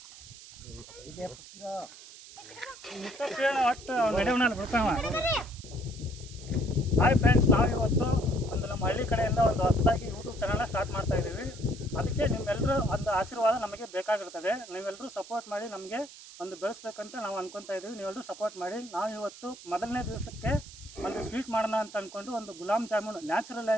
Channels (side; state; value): right; noise; hiss, 17 dB below the sound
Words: ಒಟ್ಟು ನಡೆಯವನಲ್ಲಿ ಬಿಡ್ತಾವ. ಹಾಯ್ ಫ್ರೆಂಡ್ಸ್, ನಾವು ಇವತ್ತು ಒಂದು ನಮ್ಮ ಹಳ್ಳಿ ಕಡೆಯಿಂದ ಒಂದು ಹೊಸದಾಗಿ ಯೂಟ್ಯೂಬ್ ಚಾನಲ್ನ ಸ್ಟಾರ್ಟ್ ಮಾಡ್ತಾ ಇದ್ದೀವಿ. ಅದಕ್ಕೆ ನಿಮ್ಮೆಲ್ಲರೂ ಒಂದು ಆಶೀರ್ವಾದ ನಮಗೆ ಬೇಕಾಗಿರ್ತದೆ. ನೀವೆಲ್ಲರೂ ಸಪೋರ್ಟ್ ಮಾಡಿ ನಮಗೆ ಒಂದು ಬೆಳೆಸ್ಬೇಕಂತ ನಾವು ಅನ್ಕೊತಾ ಇದ್ದೀವಿ. ನೀವೆಲ್ಲರೂ ಸಪೋರ್ಟ್ ಮಾಡಿ. ನಾವು ಇವತ್ತು ಮೊದಲನೇ ದಿವಸಕ್ಕೆ ಒಂದು ಸ್ವೀಟ್ ಮಾಡೋಣ ಅಂತ ಅಂದ್ಕೊಂಡು ಒಂದು ಗುಲಾಬ್ ಜಾಮೂನ್ ನ್ಯಾಚುರಲ್